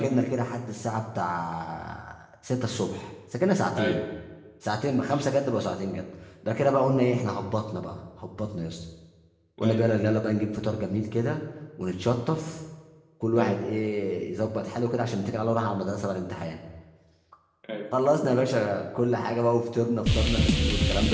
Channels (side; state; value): both; identical; correlation 1.00